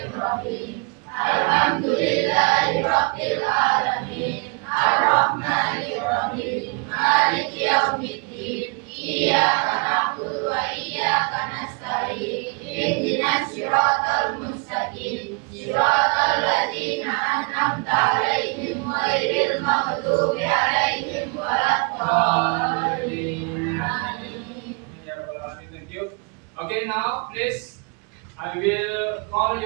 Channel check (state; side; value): quieter; left; 32.7 dB